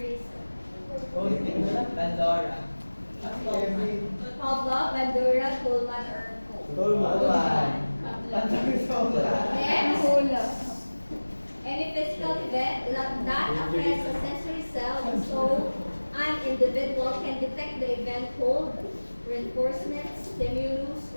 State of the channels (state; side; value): inverted; both; correlation -1.00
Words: Oh, hindi mo na. Pandora. Pavlov, Bandura, Kuhlman, or Tolman. Next, any physical event that affects a sensory cell so an individual can detect the event called reinforcement, stimulus,